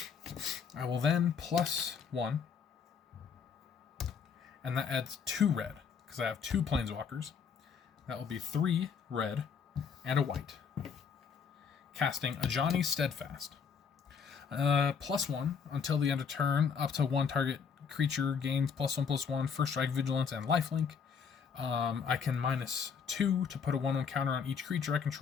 I will then +1, and that adds 2 red, because I have 2 planeswalkers. That will be 3 red and a white. Casting Ajani Steadfast. +1 until the end of turn, up to 1 target creature gains +1/+1, First Strike, Vigilance, and Lifelink. I can -2 to put a 1/1 counter on each creature I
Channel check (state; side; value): quieter; right; 6.4 dB